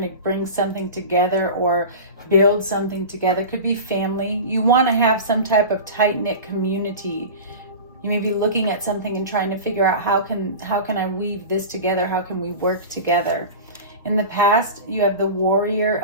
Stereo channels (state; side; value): inverted; both; correlation -0.30